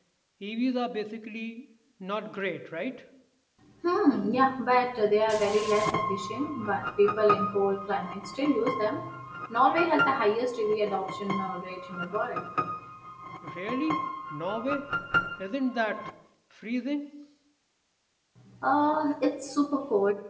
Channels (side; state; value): both; identical; correlation 1.00